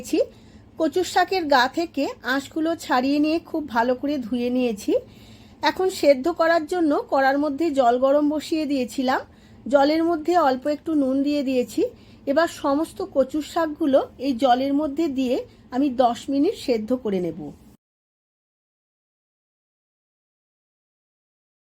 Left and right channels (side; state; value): both; identical; correlation 1.00